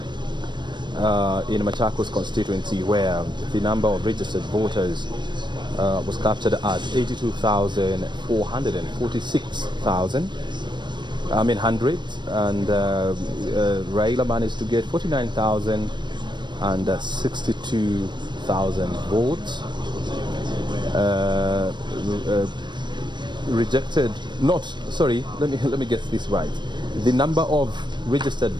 in Machakos constituency, where the number of registered voters was captured at 82,446,100, and Raila managed to get 49,062,000 votes. Rejected, let me get this right. The number of registered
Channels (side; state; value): left; late; 0.22 ms